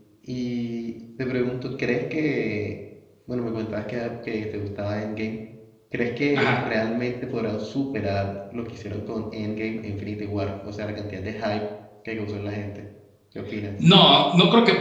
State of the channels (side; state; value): both; identical; correlation 1.00